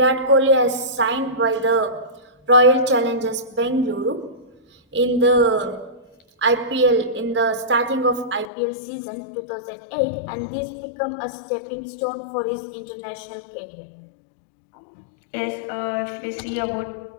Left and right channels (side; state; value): right; drops out; at 8.5 s